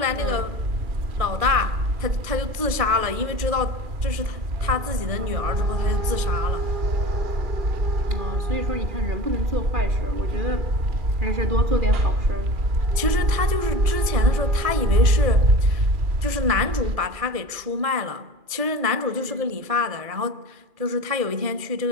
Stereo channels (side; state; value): left; late; 2.4 ms